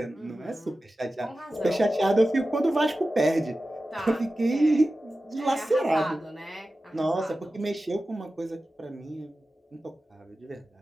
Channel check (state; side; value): normal; both; correlation 0.94